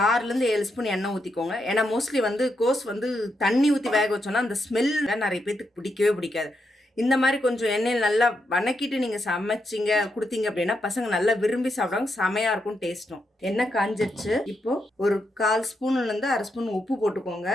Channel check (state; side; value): normal; both; correlation 0.82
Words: 6லேருந்து 7 ஸ்பூன் எண்ணெய் ஊற்றிக்கோங்க. ஏன்னா மோஸ்ட்லி கோஸ் தண்ணி ஊற்றி வேக வச்சோன்னா அந்த ஸ்மெல் நிறைய பேர்த்துக்கு பிடிக்கவே பிடிக்காது. இந்த மாதிரி கொஞ்சம் எண்ணெயில் நல்லா வணக்கிட்டு நீங்கள் சமைச்சிங்க கொடுத்தீங்க அப்படின்னா பசங்க நல்லா விரும்பி சாப்பிடுவாங்க. செமையாக இருக்கும் டேஸ்ட்டும். எண்ணெய் காஞ்சிருச்சு. இப்போது ஒரு 1/4 ஸ்பூன்லேருந்து 1/2 ஸ்பூன் உப்பு போட்டுக்கோங்க.